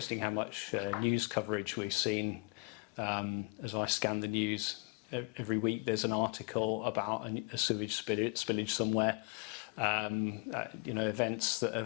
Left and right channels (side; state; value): right; quieter; 30.6 dB